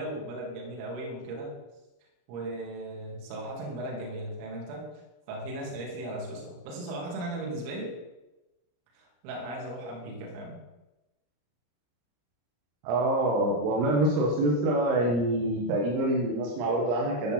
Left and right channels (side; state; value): left; late; 33 ms